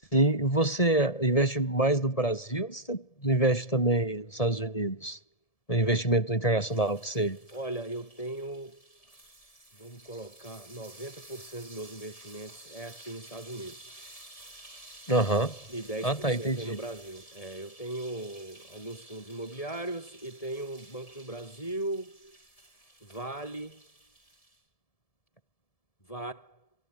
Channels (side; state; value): right; late; 1.7 ms